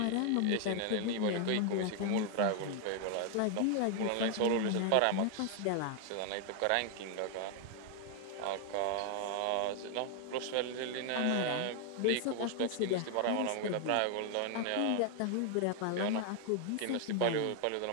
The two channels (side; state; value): both; different; correlation 0.00